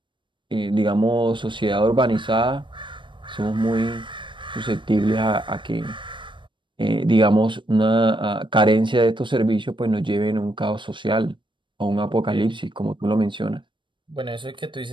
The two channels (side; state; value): left; late; 0.23 ms